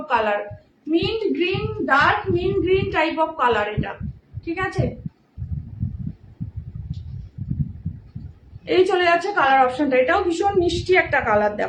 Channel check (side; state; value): both; identical; correlation 1.00